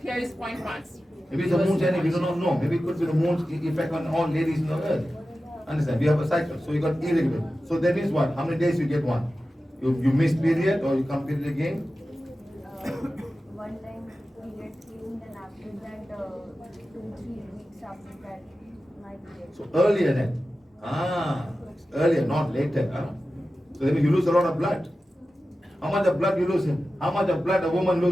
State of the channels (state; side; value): normal; both; correlation 0.94